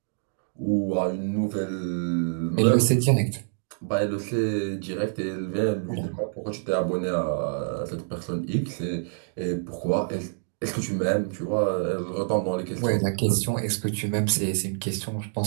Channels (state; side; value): silent; left; digital silence